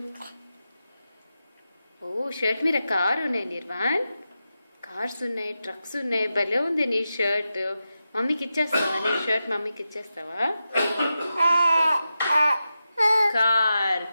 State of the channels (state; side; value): inverted; both; correlation -0.91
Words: ఓ షర్ట్ మీద కారు ఉన్నాయి నిర్వాణ్. కార్స్ ఉన్నాయి, ట్రక్స్ ఉన్నాయి. భలే ఉంది నీ షర్ట్. మమ్మీకి ఇచ్చేస్తావా నీ షర్ట్? మమ్మీకి ఇచ్చేస్తావా?